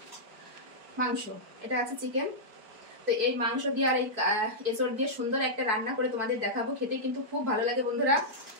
মাংস। এটা আছে চিকেন। তো এই মাংস দিয়ে আর এই এচড় দিয়ে সুন্দর একটা রান্না করে তোমাদের দেখাবো। খেতে কিন্তু খুব ভালো লাগে বন্ধুরা,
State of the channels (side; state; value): left; late; 4.6 ms